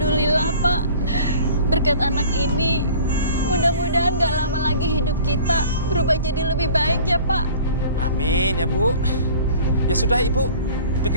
Pak. Berkat anak ini, mudah-mudahan gak lama lagi hidup kita berubah jadi lebih baik ya Pak. Amin ya, Bu. Ya sudah, Ibu.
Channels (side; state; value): both; inverted; correlation -0.46